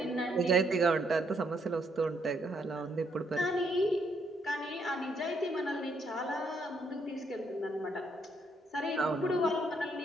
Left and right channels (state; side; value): normal; both; correlation 0.73